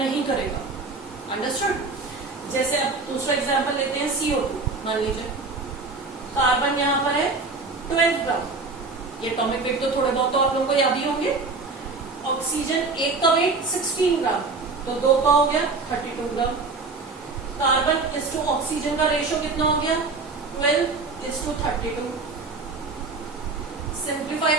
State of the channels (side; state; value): left; quieter; 3.9 dB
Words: करेगा। अंडरस्टूड? जैसे अब दूसरा एग्जांपल लेते हैं, CO2 मान लीजिए। कार्बन यहां पर है 12 ग्राम। ये एटॉमिक वेट तो थोड़े बहुत तो आप लोगों को याद ही होंगे। ऑक्सीजन एक का वेट 16 ग्राम। तो 2 का हो गया 32 ग्राम। कार्बन इस टू ऑक्सीजन का रेशियो कितना हो गया 12:32। सिंप्लीफाई